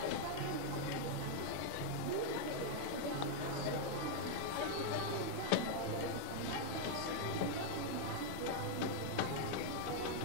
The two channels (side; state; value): both; different; correlation -0.01